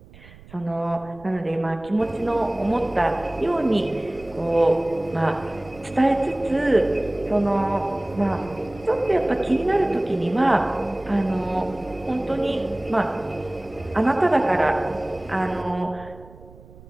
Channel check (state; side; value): noise; right; rumble, 22 dB below the sound